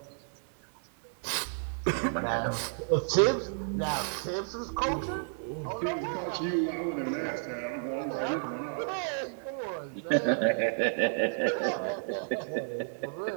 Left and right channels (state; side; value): silent; left; digital silence